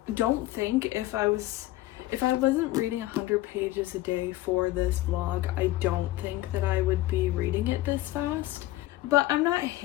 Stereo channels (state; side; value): quieter; right; 16.5 dB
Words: don't think if I wasn't reading 100 pages a day for this vlog, I don't think that I would be reading it this fast. But I'm not